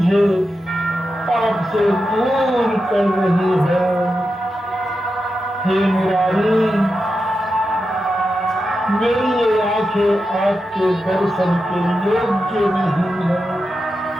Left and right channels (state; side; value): normal; both; correlation 0.89